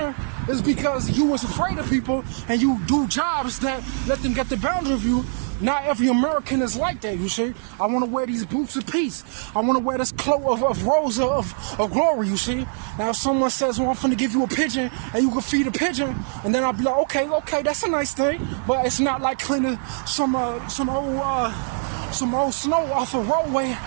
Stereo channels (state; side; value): silent; left; digital silence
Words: Is because you was afraid of people and you do jobs that let them get the boundary of you. Not every American is like that, you see. I want to wear these boots of peace. I want to wear this cloak of rose of glory, you see. Now if someone says, well, I'm finna give you a pigeon and you can feed a pigeon, and then I'll be like, okay, that's a nice thing, but it's not like cleaning some old snow off a roadway